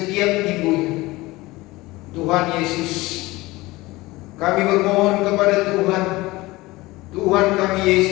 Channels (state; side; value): quieter; right; 20.4 dB